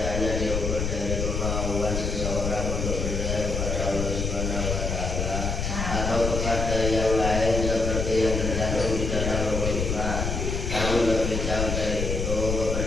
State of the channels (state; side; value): noise; left; rumble, 1 dB below the sound